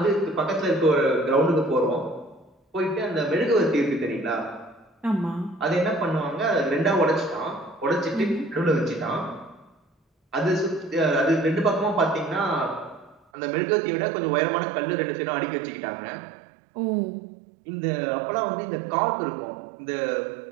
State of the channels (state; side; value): drops out; left; at 13.2 s